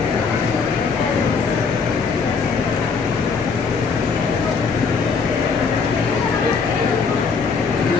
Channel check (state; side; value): quieter; right; 5.2 dB